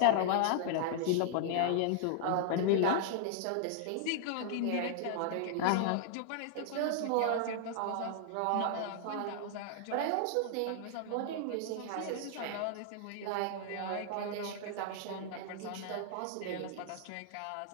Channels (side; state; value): both; different; correlation -0.01